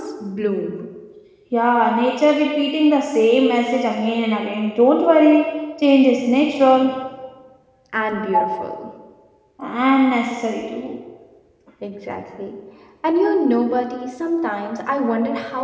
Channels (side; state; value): both; identical; correlation 1.00